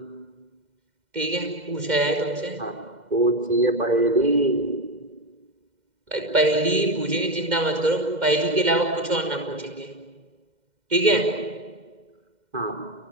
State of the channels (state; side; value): late; left; 2.1 ms